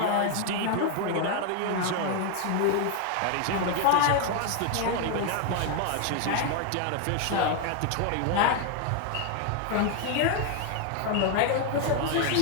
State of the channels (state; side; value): different; both; correlation 0.01